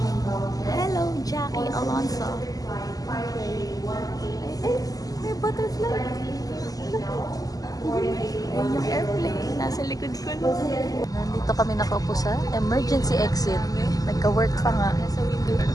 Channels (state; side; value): late; right; 0.17 ms